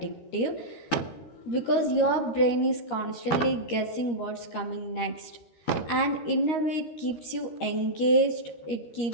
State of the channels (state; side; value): late; right; 13 ms